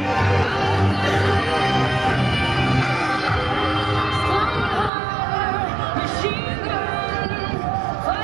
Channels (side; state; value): left; drops out; at 4.9 s